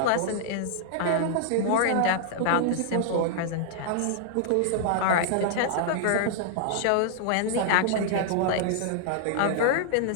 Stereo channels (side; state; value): both; different; correlation -0.01